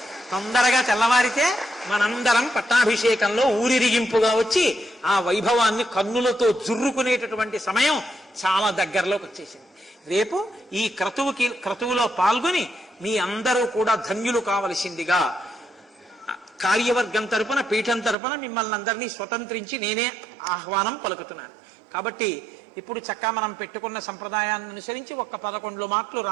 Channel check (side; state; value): left; drops out; at 18.2 s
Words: తొందరగా తెల్లవారితే మనందరం పట్టాభిషేకంలో ఊరిరిగింపుగా వచ్చి ఆ వైభవాన్ని కన్నులతో జుర్రుకునేటటువంటి సమయం చాలా దగ్గరలోకి వచ్చేసింది. రేపు ఈ క్రతువులో పాల్గొని మీ అందరూ కూడా ధన్యులు కావలసిందిగా కార్యవర్గం తరపున పీఠం తరపున మిమ్మల్ని అందరినీ స్వతంత్రించి నేనే ఆహ్వానం పలుకుతున్నాను. కాబట్టి ఇప్పుడు చక్కగా మనం పెట్టుకున్న సంప్రదాయాన్ని అనుసరించి 11 మాటలు